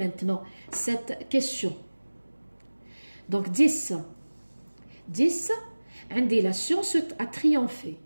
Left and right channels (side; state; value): both; inverted; correlation -1.00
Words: cette question. Donc 10. 10, عندي la science a triomphé.